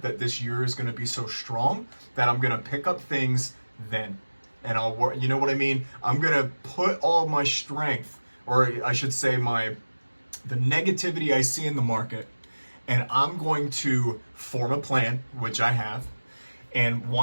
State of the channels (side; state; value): both; inverted; correlation -1.00